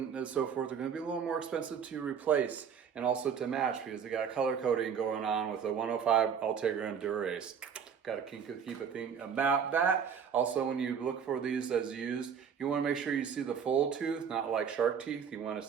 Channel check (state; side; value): quieter; left; 7.2 dB